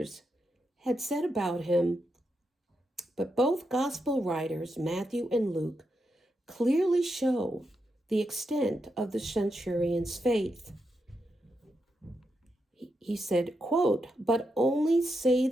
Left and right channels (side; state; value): both; normal; correlation 0.85